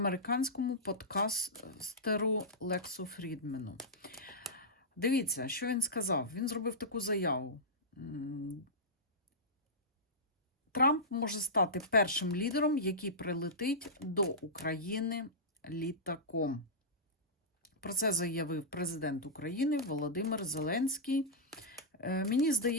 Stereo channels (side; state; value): both; normal; correlation -0.12